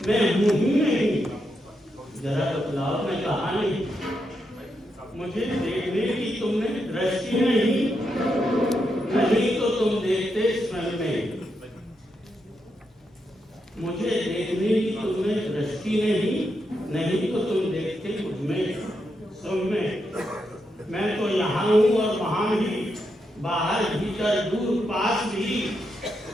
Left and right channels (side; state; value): both; normal; correlation 0.83